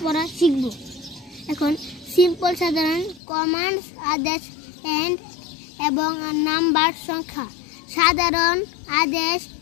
পড়া শিখব। এখন সিম্পল সাধারণ কমান্ডস, আদেশ এবং নাম্বার সংখ্যা। সাধারণ আদেশ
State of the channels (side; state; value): right; drops out; at 3.2 s